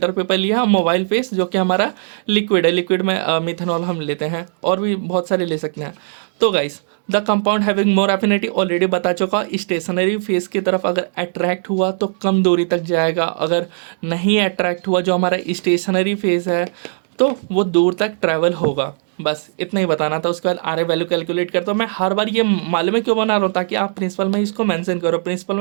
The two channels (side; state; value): left; silent; digital silence